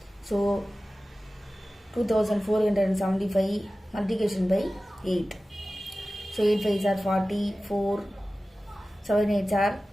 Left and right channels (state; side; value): normal; both; correlation 0.96